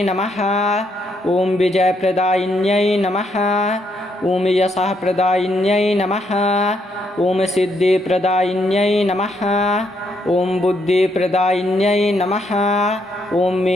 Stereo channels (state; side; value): normal; both; correlation 0.75